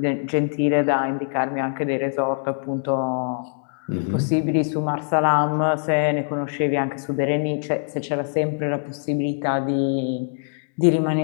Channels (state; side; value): silent; right; digital silence